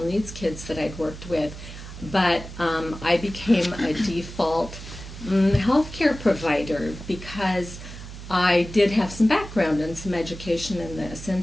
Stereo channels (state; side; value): noise; right; hum, 12 dB below the sound